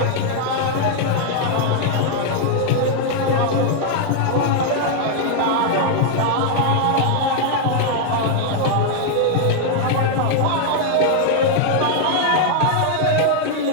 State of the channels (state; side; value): different; both; correlation 0.00